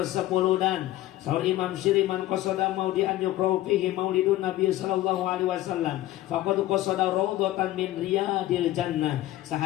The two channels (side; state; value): right; quieter; 15.4 dB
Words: wuludan. Saur Imam Syiri man qasada maudian yuqra'u fihi maulidun Nabi sallallahu alaihi wasallam faqad qasada raudhatan min riyadil jannah.